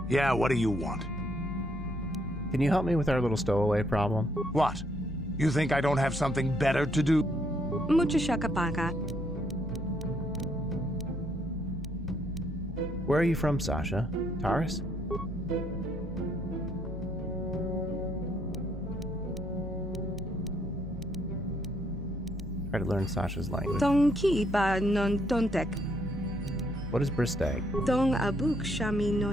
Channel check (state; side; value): normal; both; correlation 0.71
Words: Yeah, what do you want? Can you help me with our little stowaway problem? What? You think I don't have something better to do? Muchashakapaka. Where are you from, Sasha? Taris? Try to learn Sasha's language. Tonki ba non tontek. What is Bristag? Tong abuk shami